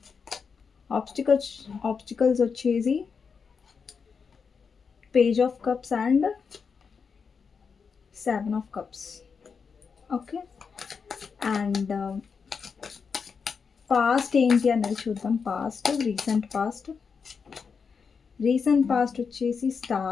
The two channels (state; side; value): quieter; right; 5.7 dB